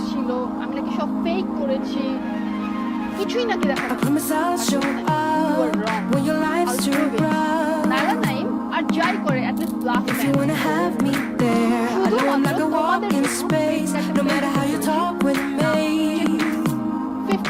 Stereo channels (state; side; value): identical; both; correlation 1.00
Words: ছিল, আমি নাকি সব ফেক করেছি, কিছুই নাকি দেখা নাইলা নাইম আর যাই করে at least bluff If you wanna have me there, I know I'm like a walk in space. No matter how you talk with me,